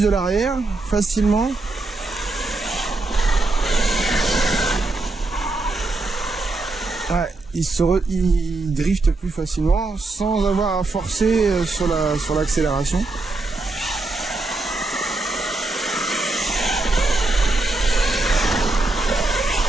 de l'arrière facilement. Ouais, il drift plus facilement sans avoir à forcer sur l'accélération.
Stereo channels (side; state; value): left; quieter; 3.2 dB